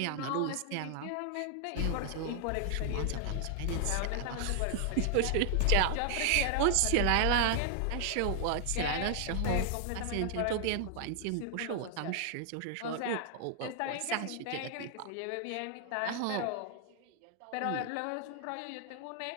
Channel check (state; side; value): different; both; correlation 0.00